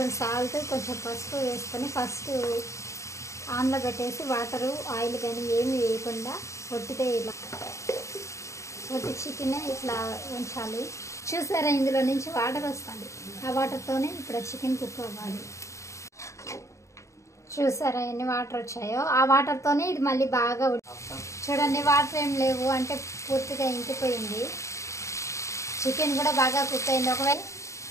సాల్ట్, కొంచెం పసుపు వేసుకొని ఫస్ట్ ఆన్లో పెట్టేసి వాటరు, ఆయిల్ కానీ ఏమి వేయకుండా ఒట్టితే ఇలా ఒట్టి చికెన్ ఇట్లా ఉంచాలి. చూసారా, ఇందులో నుంచి వాటర్ వస్తుంది. ఆ వాటర్తోనే ఇప్పుడు చికెన్ కుక్ అవ్వాలి. చూసారా ఎన్ని వాటర్ వచ్చాయో? ఆ వాటర్తోనే ఇది మళ్ళీ బాగా చూడండి. వాటర్ ఏం లేవు అంటే పూర్తిగా ఇంకిపోయింది. చికెన్ కూడా బాగా కుక్ అయింది. ఒకవేళ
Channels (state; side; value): late; right; 0.14 ms